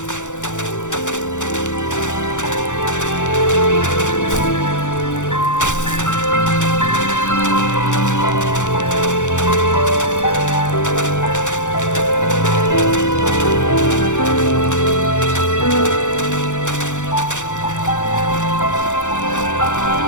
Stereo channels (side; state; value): right; late; 0.85 ms